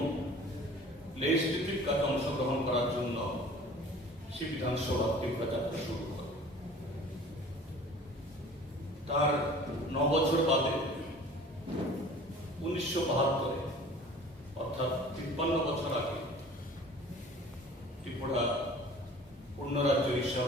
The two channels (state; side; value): normal; both; correlation 0.46